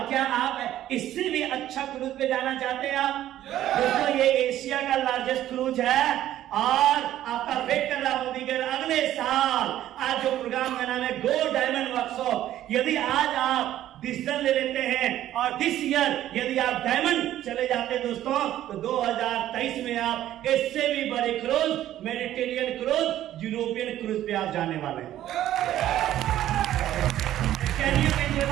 क्या आप इससे भी अच्छा क्रूज पे जाना चाहते हैं आप? दोस्तों ये एशिया का लार्जेस्ट क्रूज है और आपका वेट कर रहा मोदी के अगले साल। आज जो प्रोग्राम का नाम है गो डायमंड वर्कशॉप, यदि आज आप डिसीजन ले लेते हैं और दिस ईयर यदि आप डायमंड चले जाते हैं दोस्तों, तो 2023 में आप इससे भी बड़े cruise, Mediterranean cruise, European cruise पे आप जाने वाले हैं। Can you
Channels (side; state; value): left; quieter; 12.8 dB